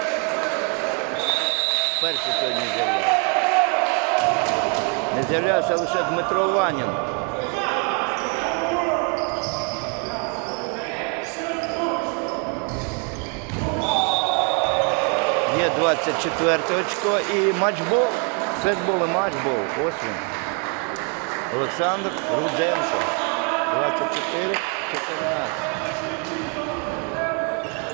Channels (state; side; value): quieter; left; 37.5 dB